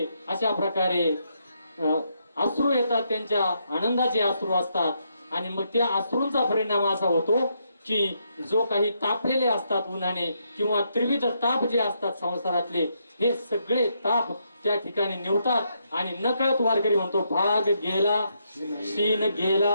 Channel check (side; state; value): both; inverted; correlation -0.78